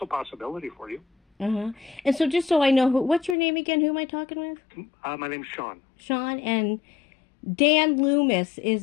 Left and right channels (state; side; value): drops out; right; at 3.4 s